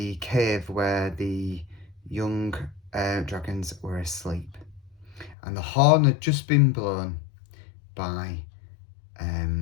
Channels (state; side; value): drops out; right; at 5.4 s